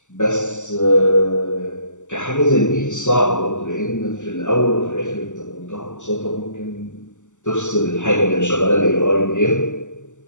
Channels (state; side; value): late; right; 0.85 ms